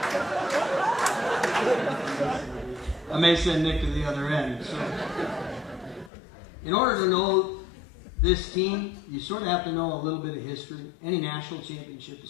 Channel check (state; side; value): drops out; right; at 6.1 s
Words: I may send Nick to the other end. So, in order to know this team, you sort of have to know a little bit of history. Any national championship is